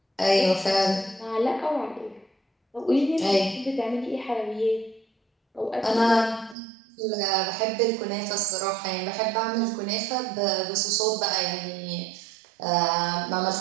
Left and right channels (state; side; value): drops out; left; at 6.6 s